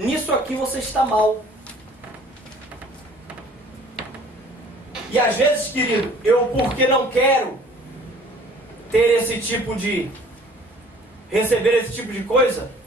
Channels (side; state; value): both; normal; correlation 0.52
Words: aqui você está mal. E às vezes, querido, eu porque não quero ter esse tipo de receber esse tipo de coisa,